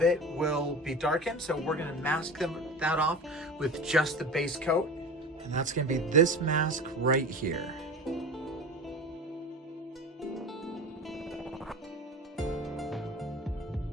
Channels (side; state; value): both; normal; correlation 0.33